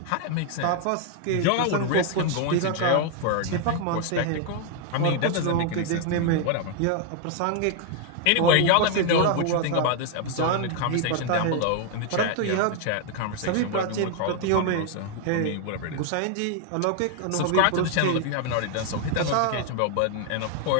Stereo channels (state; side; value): different; both; correlation 0.00